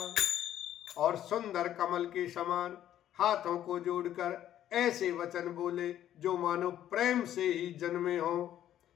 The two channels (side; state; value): right; quieter; 11.6 dB